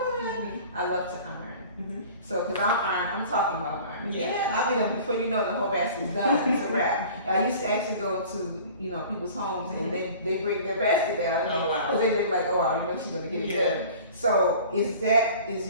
I love to iron. So, because I'm talking about iron. Yeah. I'll be done before you know the whole basket's done. It's a wrap. I used to actually go to, you know, people's homes, and they bring their basket down. Because they be like, oh, wow, you know she's going to get it done. So, is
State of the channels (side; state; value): both; inverted; correlation -0.44